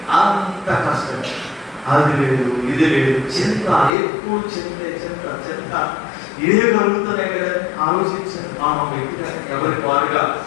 అంత కష్టం. అది లేదు, ఇది లేదు, చింత, ఎక్కువ చింత చింత చింత ఇదే కలుగుతున్నాయి కదా. ఆలోచించారు మనం వ్యక్తిగా ఎవరికి వారుగా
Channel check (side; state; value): right; drops out; at 4.0 s